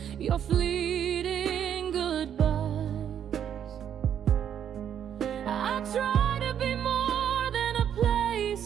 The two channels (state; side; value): quieter; left; 9.2 dB